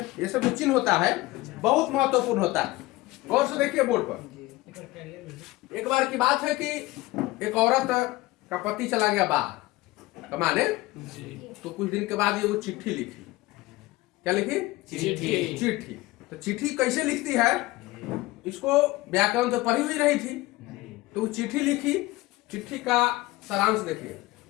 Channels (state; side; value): quieter; right; 19.8 dB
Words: ये सब जो चिन्ह होता है बहुत महत्वपूर्ण होता है। गौर से देखिए बोर्ड पर। एक बार की बात है कि एक औरत का पति चला गया बाहर कमाने, तो कुछ दिन के बाद ये वो चिट्ठी लिखी। क्या लिखी? चिट्ठी। तो चिट्ठी कैसे लिखती है, इसको व्याकरण तो पढ़ी हुई रही थी, तो वो चिट्ठी लिखी। चिट्ठी का सारांश देखिए।